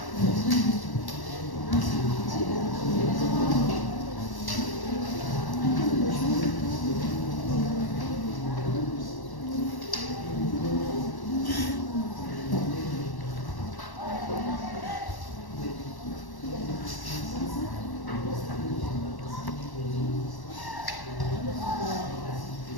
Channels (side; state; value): right; late; 1.1 ms